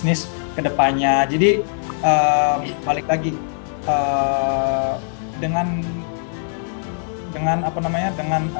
ke depannya. Jadi balik lagi, dengan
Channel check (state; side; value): silent; right; 65 dB below the other